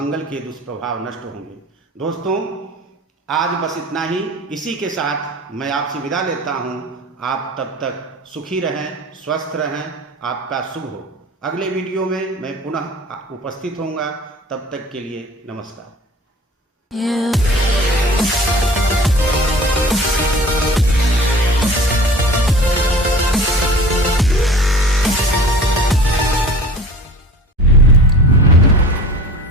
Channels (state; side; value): normal; both; correlation 0.40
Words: के दुष्प्रभाव नष्ट होंगे। दोस्तों, आज बस इतना ही। इसी के साथ मैं आपसे विदा लेता हूँ। आप तब तक सुखी रहें, स्वस्थ रहें, आपका शुभ हो। अगले वीडियो में मैं पुनः उपस्थित होऊंगा। तब तक के लिए नमस्कार।